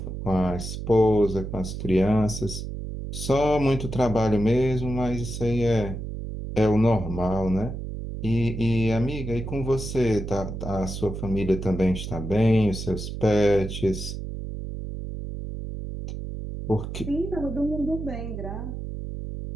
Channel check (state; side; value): noise; right; hum, 7 dB below the sound